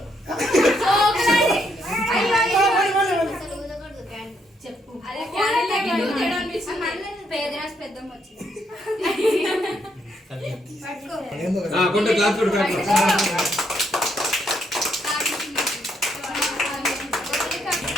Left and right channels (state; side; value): normal; both; correlation 0.75